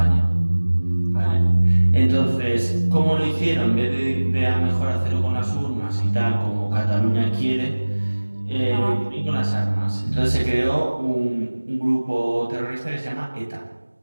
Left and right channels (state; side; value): inverted; both; correlation -1.00